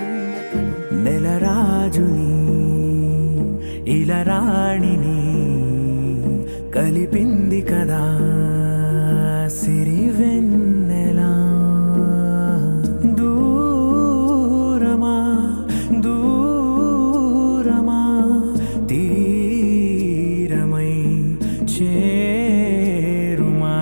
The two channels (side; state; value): both; inverted; correlation -1.00